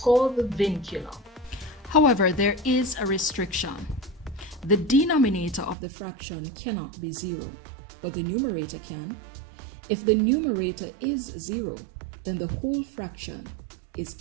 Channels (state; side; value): drops out; left; at 5.8 s